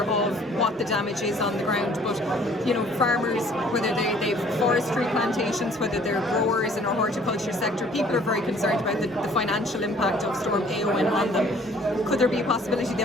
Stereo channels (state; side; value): normal; both; correlation 0.57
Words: of what the damage is on the ground, but you know, farmers, whether they've forestry plantations, whether they're growers in our horticulture sector, people are very concerned about the financial impact of Storm Éowyn on them. Could there be a possibility